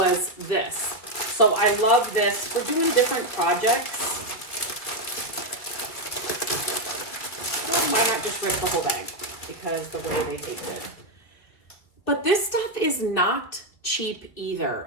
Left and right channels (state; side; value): late; right; 2.1 ms